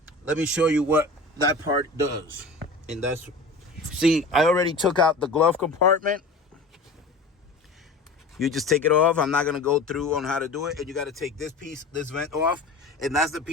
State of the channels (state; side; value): quieter; right; 3.2 dB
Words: me show you what that part does. And see, I already took out the glove compartment. You just take it off. I'm not going to go through on how to do it. And you got to take this piece, this vent off. And that's the